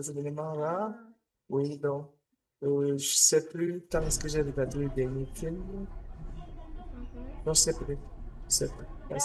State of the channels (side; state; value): both; identical; correlation 1.00